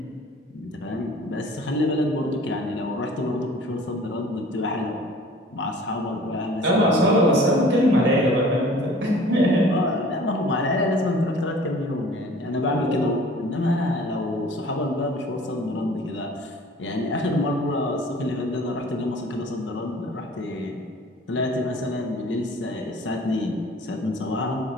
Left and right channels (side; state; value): both; normal; correlation 0.48